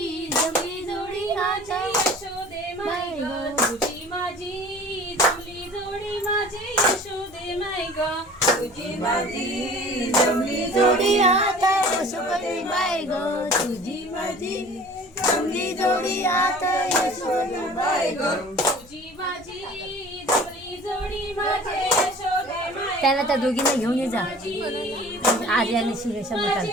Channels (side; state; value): left; noise; rumble, 26 dB below the sound